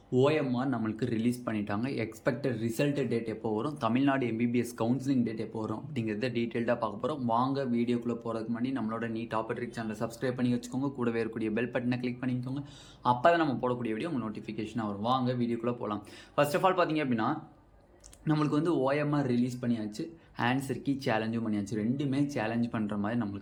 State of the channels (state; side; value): identical; both; correlation 1.00